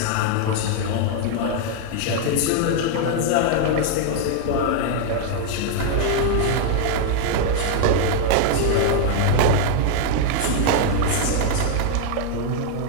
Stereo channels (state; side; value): different; both; correlation 0.00